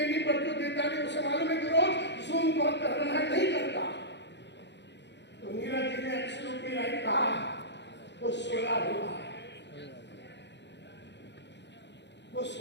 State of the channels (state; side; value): late; right; 0.51 ms